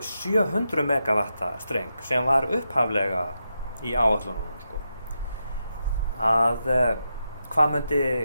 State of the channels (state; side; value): inverted; both; correlation -0.86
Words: 700 megavatta streng sem var upphaflega í áætlunum, sko. Að hvað